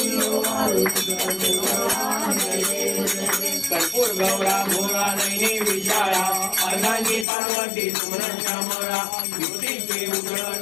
कर्पूर गौरा भोरा नैनी विचारा अर्धांगी पार्वती सुमन श्यामरा युवती के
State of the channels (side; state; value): right; drops out; at 7.2 s